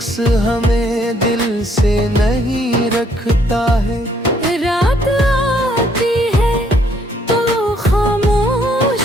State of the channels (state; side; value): normal; both; correlation 0.67